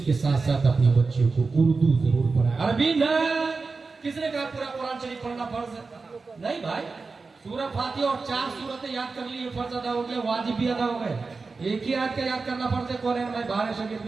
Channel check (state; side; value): quieter; left; 4.2 dB